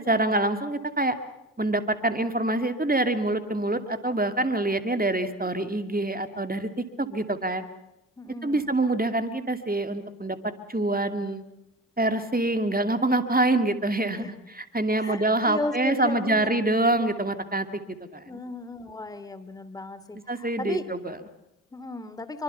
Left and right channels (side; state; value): both; normal; correlation 0.33